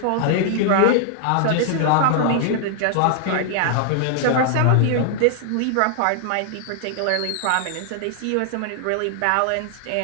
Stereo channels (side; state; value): both; different; correlation -0.01